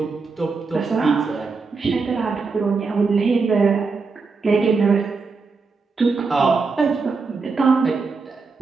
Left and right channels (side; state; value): left; quieter; 4.5 dB